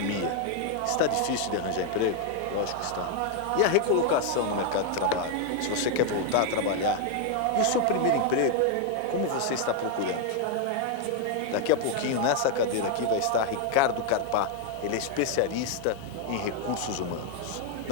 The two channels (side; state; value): both; different; correlation 0.00